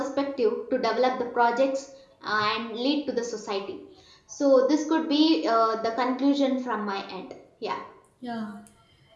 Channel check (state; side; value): identical; both; correlation 1.00